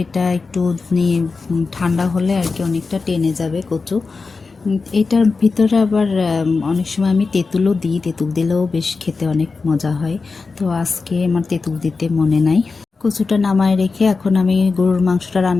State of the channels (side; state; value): right; quieter; 4.3 dB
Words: এটা একটু ঠান্ডা হলে আর কি অনেকটা টেনে যাবে কচু। এটার ভিতরে আবার অনেক সময় আমি তেঁতুলও দিই, তেঁতুল দিলেও বেশ খেতে অনেক মজা হয়। তো আজকে আমার তেঁতুল দিতে মনে নাই। কচুটা নামায় রেখে এখন আমি গরুর মাংসটা